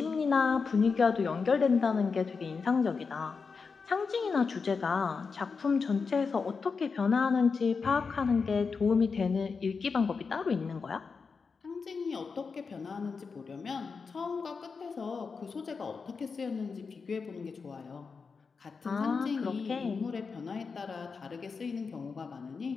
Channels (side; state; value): right; quieter; 5.1 dB